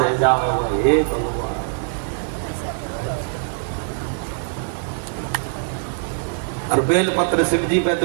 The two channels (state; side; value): silent; left; digital silence